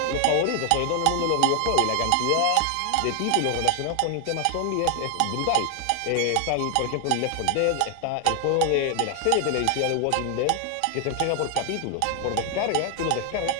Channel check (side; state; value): both; different; correlation 0.00